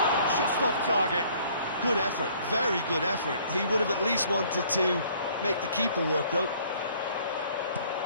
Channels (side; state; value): both; inverted; correlation -0.58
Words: Just off target. Good effort, very good effort. He would have at least wanted to make the keeper work, though.